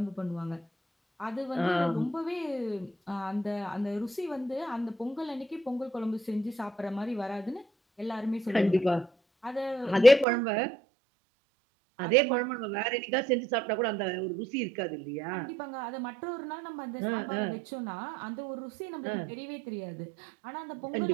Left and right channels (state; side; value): drops out; left; at 10.2 s